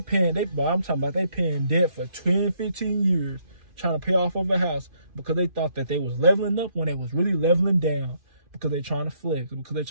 paying debt for 10, 15 years trying to pay off of a house because they thought that they was leveling up when they was really leveling down. Because they trying to flex, because they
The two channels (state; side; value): late; left; 2.5 ms